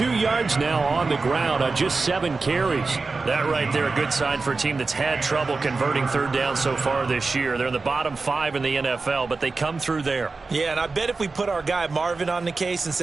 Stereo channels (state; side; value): quieter; left; 4.0 dB